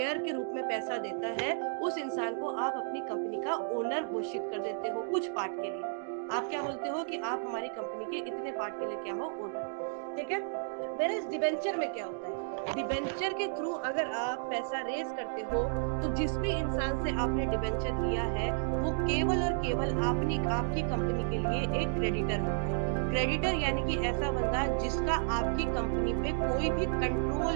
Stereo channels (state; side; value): silent; left; digital silence